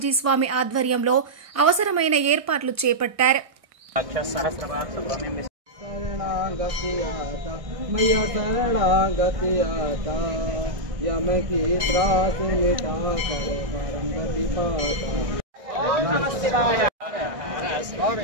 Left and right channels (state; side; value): late; left; 1.6 ms